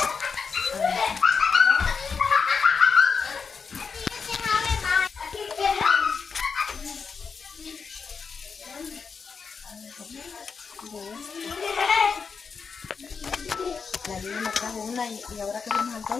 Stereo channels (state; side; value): quieter; right; 5.5 dB